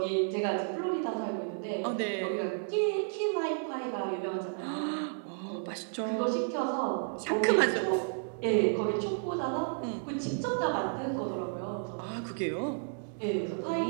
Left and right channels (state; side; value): silent; left; digital silence